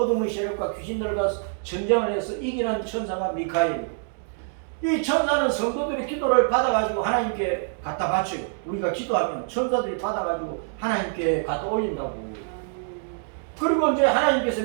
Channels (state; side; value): silent; left; digital silence